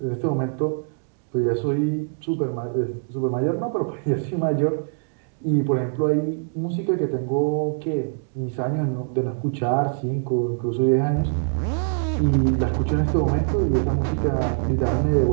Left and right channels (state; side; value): silent; left; digital silence